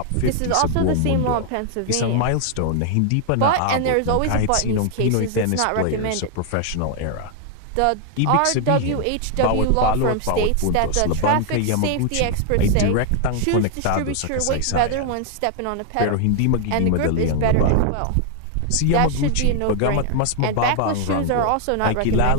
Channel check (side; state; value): both; different; correlation 0.00